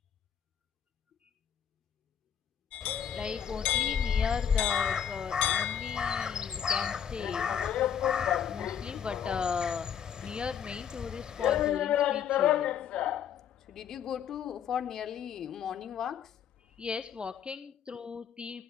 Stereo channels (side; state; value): right; quieter; 8.4 dB